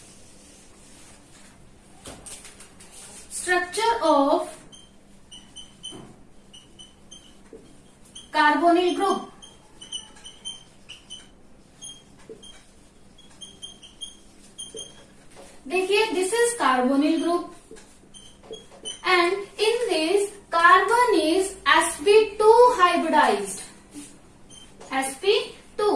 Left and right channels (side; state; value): both; identical; correlation 1.00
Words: Structure of carbonyl group. देखिए, this is carbonyl group and in this carbon is sp2 hybridised. sp2.